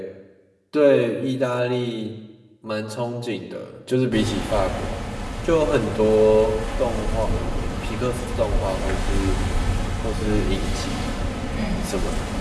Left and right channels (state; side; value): identical; both; correlation 1.00